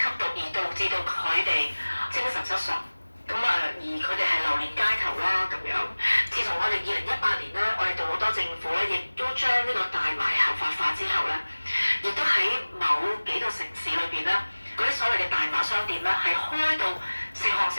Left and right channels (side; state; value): both; inverted; correlation -1.00